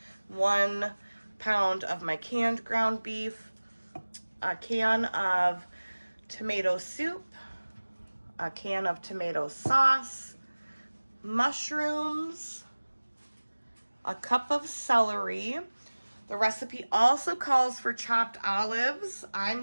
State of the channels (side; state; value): both; inverted; correlation -1.00